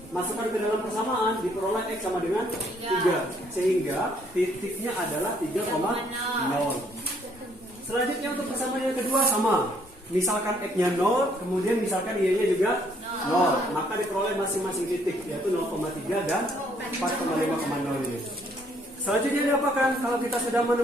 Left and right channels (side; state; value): both; normal; correlation 0.66